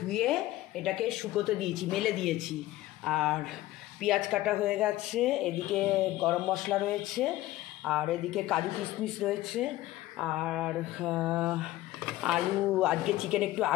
এটাকে শুকোতে দিয়েছি, মেলে দিয়েছি। আর পেঁয়াজ কাটা হয়ে গেছে, এদিকে গরম মশলা রয়েছে, আর এদিকে কাজু কিশমিশ রয়েছে, আর আলু, আজকে চিকেন একটু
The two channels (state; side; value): quieter; right; 16.2 dB